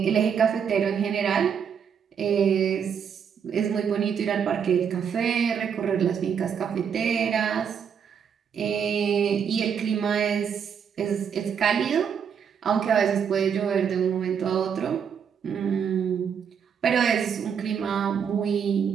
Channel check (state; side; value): quieter; left; 7.4 dB